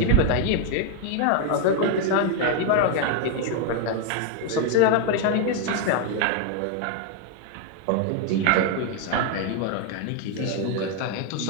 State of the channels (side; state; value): both; different; correlation 0.01